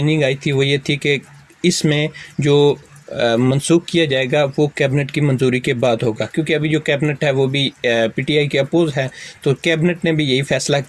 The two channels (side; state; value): both; identical; correlation 1.00